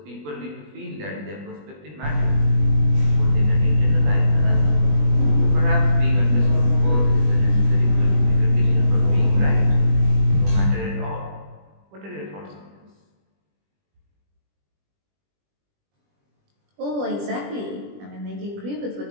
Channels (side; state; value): left; late; 20 ms